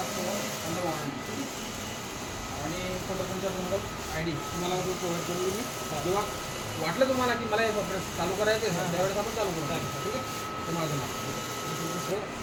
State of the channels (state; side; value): identical; both; correlation 1.00